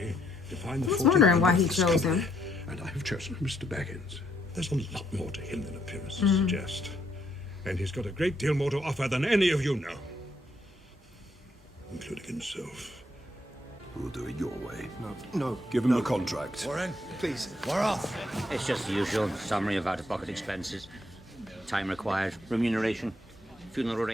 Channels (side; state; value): both; normal; correlation 0.73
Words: to find the I was 14 wondering why he members chose company, him. and I have chosen Mr. Baggins. There's a lot more to him than appearances suggest. And he's got a great deal more to offer than any of you know. Including himself. We'll do it your way. No. Give him the contract. Warren, please, we're off. It's just the usual summary of out-of-pocket expenses. Time required, remuneration, funeral